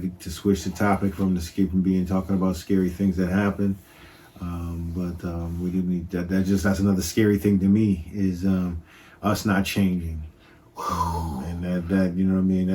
To switch the topic from talking about scary things that happen. But we do need that. That's another scary thing to me is us not changing. And that you know what I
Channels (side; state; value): both; identical; correlation 1.00